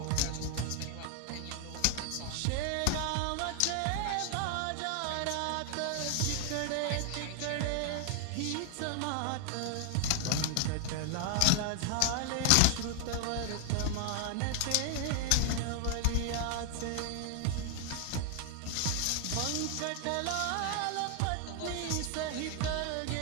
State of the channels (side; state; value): both; different; correlation 0.00